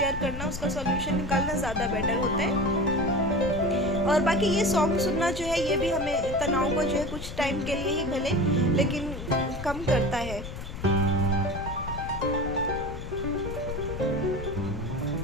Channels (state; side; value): noise; left; rumble, 8 dB below the sound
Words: करना, उसका सॉल्यूशन निकालना ज़्यादा बेटर होता है। और बाकी ये सॉन्ग सुनना जो है, ये भी हमें तनाव को जो है कुछ टाइम के लिए ही भले लेकिन कम करता है।